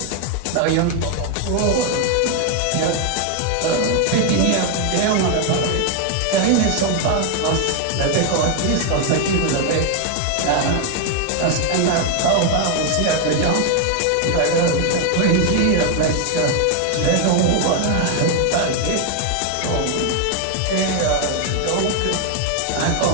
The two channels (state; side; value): different; both; correlation 0.01